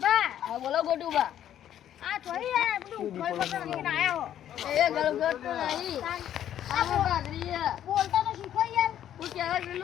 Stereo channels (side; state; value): right; quieter; 10.8 dB